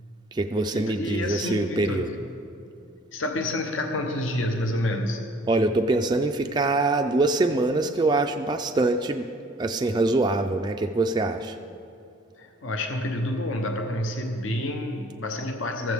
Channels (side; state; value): both; normal; correlation 0.54